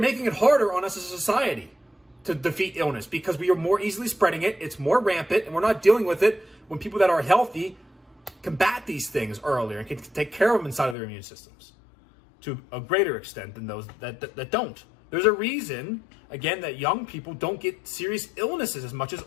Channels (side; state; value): right; drops out; at 11.0 s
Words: it harder on us as a society to defeat illness because we are more easily spreading it. It's more rampant, and we're not dealing with it when people that are healthy combat these things earlier and can take care of them inside of their immune systems to a greater extent than those that don't. There's a reason, again, that young people don't get serious illnesses as much as